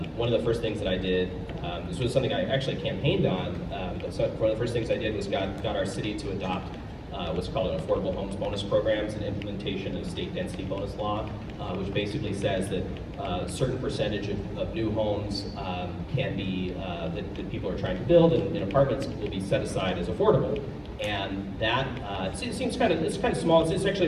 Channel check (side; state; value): both; identical; correlation 1.00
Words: one of the first things that I did, this was something I actually campaigned on. So one of the first things I did was got our city to adopt what's called an affordable homes bonus programs and implementation of state density bonus law, which basically says that a certain percentage of new homes can be that people are trying to build in apartments will be set aside as affordable. And that it seems kind of small. It's actually